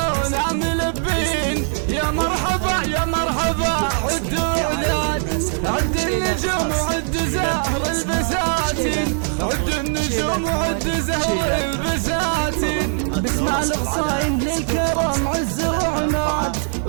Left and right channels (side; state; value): left; silent; 65 dB below the other